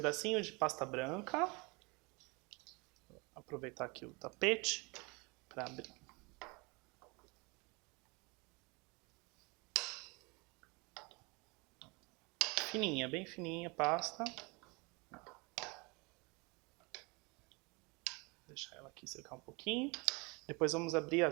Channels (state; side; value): quieter; left; 28.1 dB